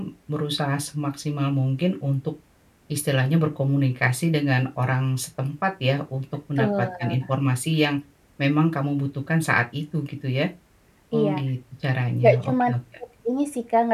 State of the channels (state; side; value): identical; both; correlation 1.00